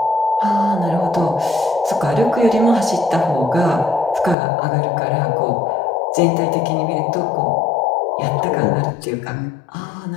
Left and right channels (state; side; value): drops out; right; at 4.4 s